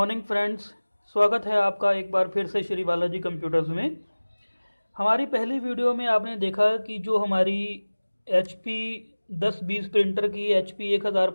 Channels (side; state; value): both; inverted; correlation -1.00